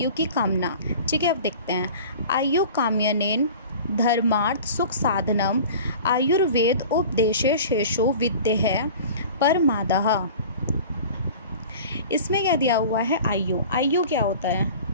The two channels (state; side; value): inverted; both; correlation -0.40